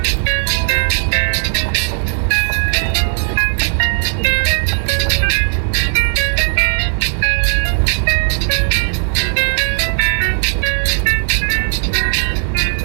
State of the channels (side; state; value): left; silent; digital silence